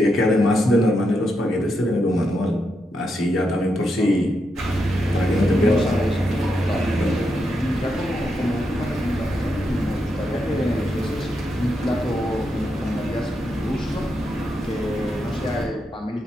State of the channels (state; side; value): normal; both; correlation 0.83